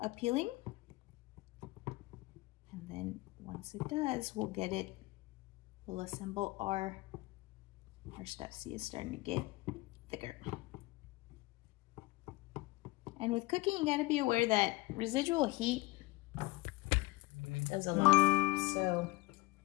And then once it does, we'll get it, we'll assemble our stuff. See, it's starting to get thicker. And with cooking, you gotta be aware that residual heat does a lot. So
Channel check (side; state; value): right; quieter; 20.8 dB